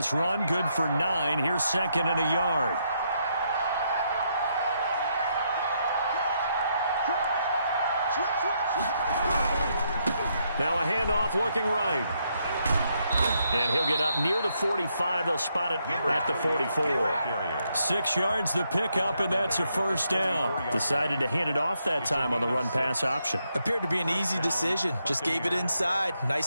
run, good for 9. Here's 2nd and a yard. Now a handoff looking right. And he'll get up near the 45. They'll spot it at the 44. 6 yards the pickup, and that's a 1st down. Decided to hand it off that time on the run-pass option. Appeared to be an easy decision. Just gave it inside. Nice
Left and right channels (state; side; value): inverted; both; correlation -0.77